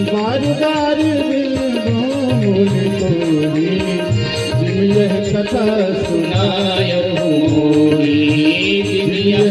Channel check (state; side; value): identical; both; correlation 1.00